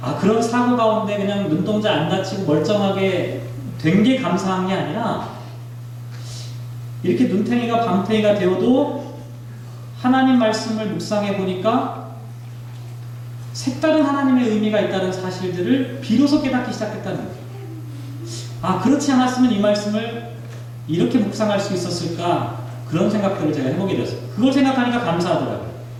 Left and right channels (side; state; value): both; identical; correlation 1.00